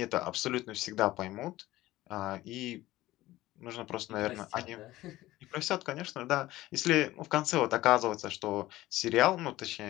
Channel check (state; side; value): quieter; right; 16.8 dB